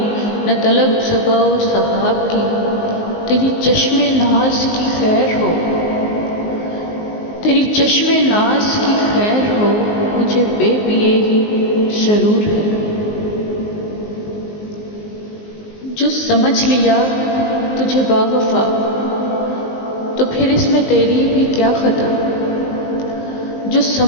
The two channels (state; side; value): late; right; 19 ms